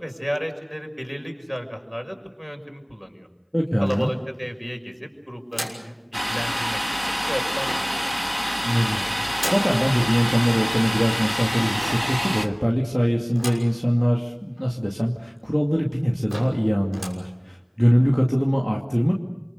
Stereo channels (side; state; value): both; identical; correlation 1.00